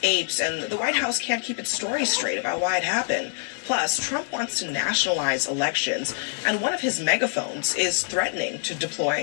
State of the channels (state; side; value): silent; right; digital silence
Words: apes, and the White House can't keep its story straight about why it happened. Plus, Trump wants to nationalize elections, and one of his megaphones is threatening to